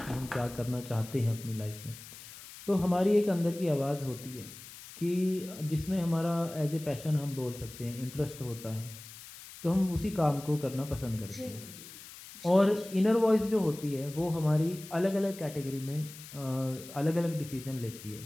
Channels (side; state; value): left; noise; hiss, 16 dB below the sound